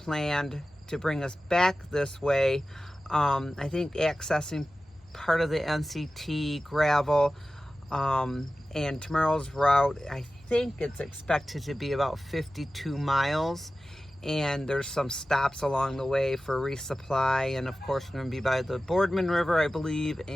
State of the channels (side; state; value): both; normal; correlation 0.95